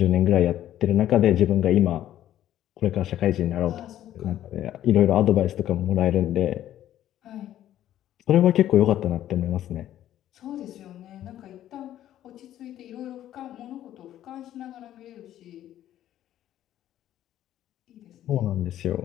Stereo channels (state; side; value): quieter; right; 12.3 dB